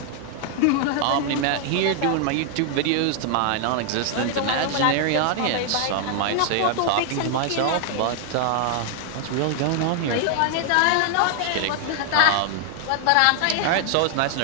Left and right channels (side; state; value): both; different; correlation 0.00